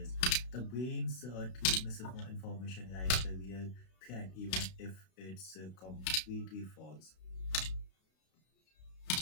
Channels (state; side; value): late; right; 32 ms